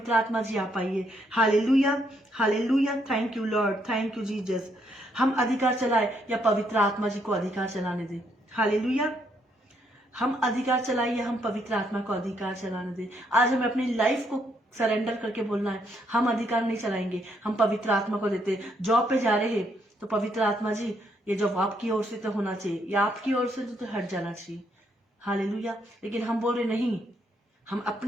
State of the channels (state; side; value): normal; both; correlation 0.73